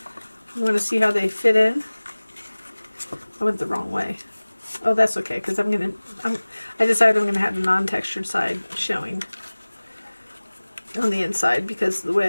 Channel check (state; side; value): inverted; both; correlation -1.00